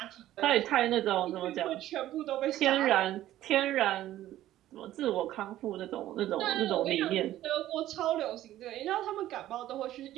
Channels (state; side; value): quieter; left; 13.8 dB